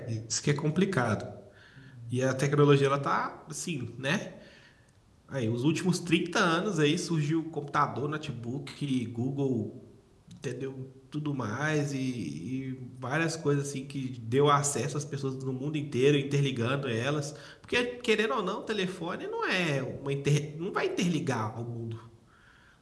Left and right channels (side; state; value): both; identical; correlation 1.00